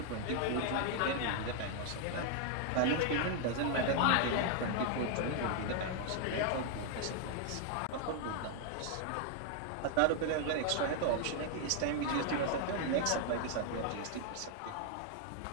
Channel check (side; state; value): both; different; correlation 0.00